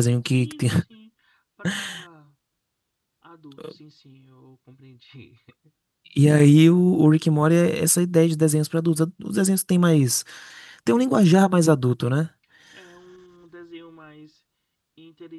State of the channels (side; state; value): both; identical; correlation 1.00